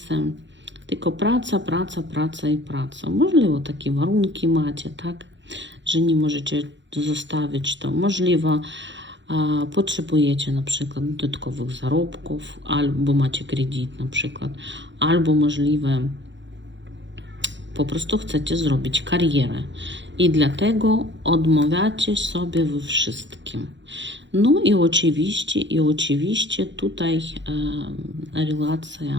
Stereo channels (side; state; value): left; late; 0.53 ms